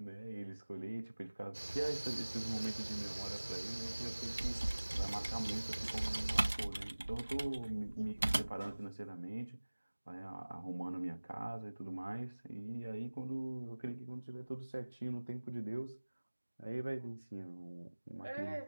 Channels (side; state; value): both; inverted; correlation -1.00